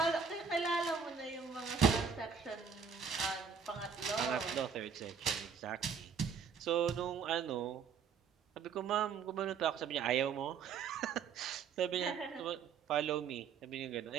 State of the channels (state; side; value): quieter; left; 6.3 dB